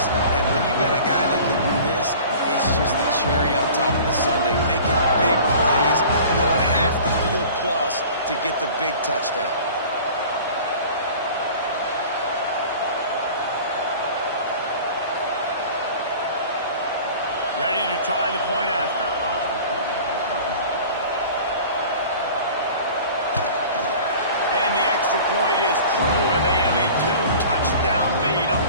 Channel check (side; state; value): both; inverted; correlation -0.43